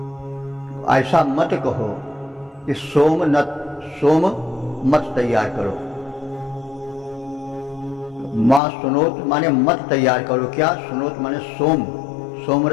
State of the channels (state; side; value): drops out; right; at 8.6 s